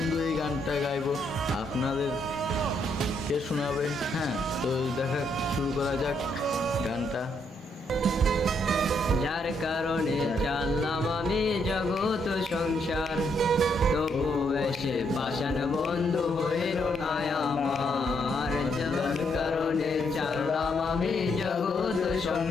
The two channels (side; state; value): both; normal; correlation 0.74